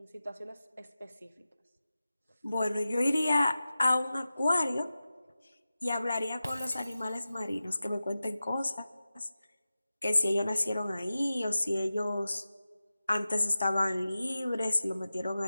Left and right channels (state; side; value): inverted; both; correlation -0.94